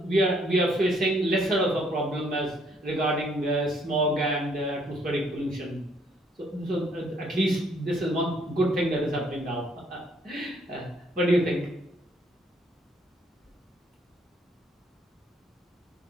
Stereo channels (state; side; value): normal; both; correlation 0.66